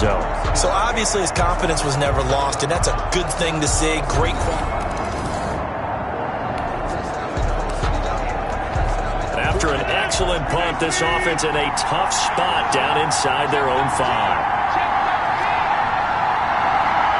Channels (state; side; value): identical; both; correlation 1.00